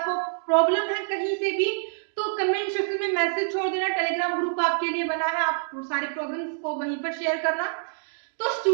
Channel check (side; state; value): left; silent; digital silence